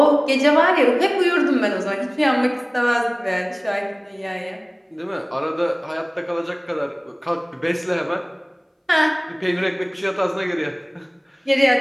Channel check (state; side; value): identical; both; correlation 1.00